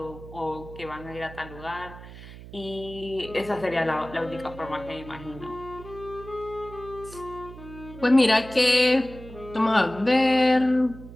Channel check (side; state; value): right; noise; hum, 15 dB below the sound